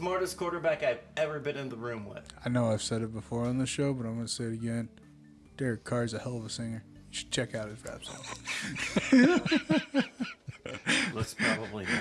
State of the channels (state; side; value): identical; both; correlation 1.00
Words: quarterback I've ever been in the room with. I know I've said it before on the show, but I'm going to say it again. Derek Carr's a hell of a singer. You should check out his rap song. Let's probably